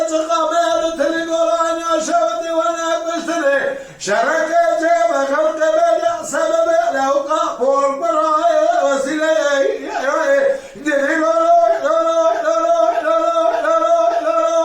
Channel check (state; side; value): identical; both; correlation 1.00